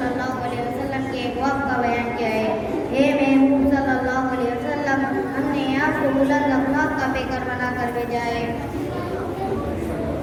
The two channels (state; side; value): identical; both; correlation 1.00